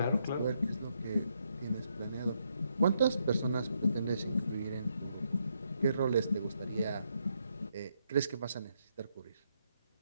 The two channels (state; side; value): inverted; both; correlation -0.77